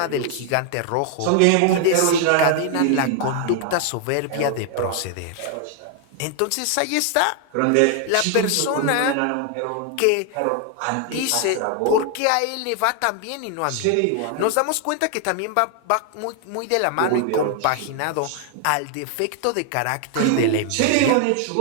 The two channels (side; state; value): both; different; correlation 0.00